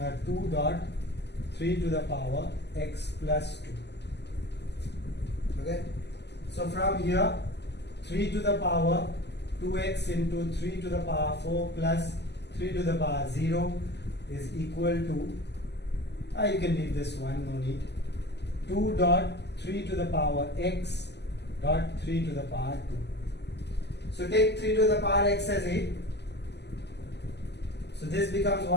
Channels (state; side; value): late; right; 0.50 ms